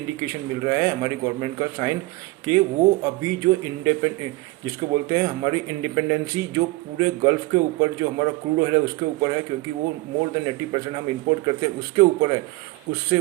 मिल रहा है हमारी गवर्नमेंट का साइन कि वो अभी जो जिसको बोलते हैं हमारी इंडिपेंडेंसी जो पूरे गल्फ के ऊपर जो हमारा क्रूड ऑयल है उसके ऊपर है, क्योंकि वो मोर देन 80% हम इंपोर्ट करते हैं उसके ऊपर है, उससे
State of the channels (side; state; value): left; quieter; 21.1 dB